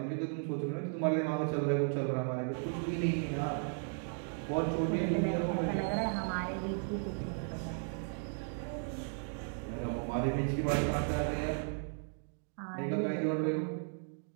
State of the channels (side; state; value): left; silent; 54 dB below the other